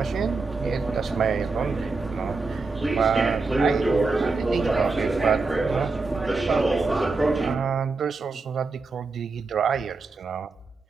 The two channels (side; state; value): left; quieter; 3.9 dB